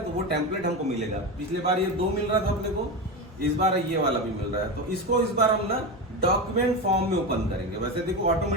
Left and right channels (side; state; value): both; normal; correlation 0.19